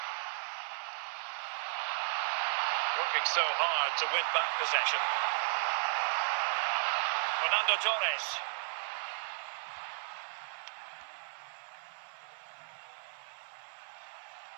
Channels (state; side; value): silent; left; 54 dB below the other